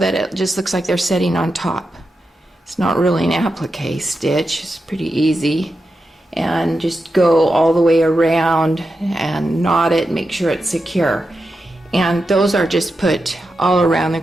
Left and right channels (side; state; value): both; normal; correlation 0.89